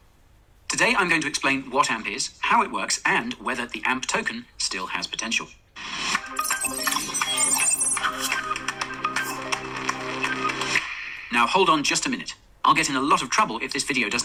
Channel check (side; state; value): both; identical; correlation 1.00